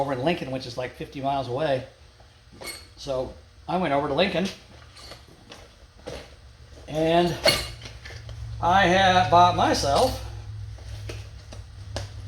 in Lincoln, which is like 50 miles away. So I went over to Lincoln, and I have bought myself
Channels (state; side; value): identical; both; correlation 1.00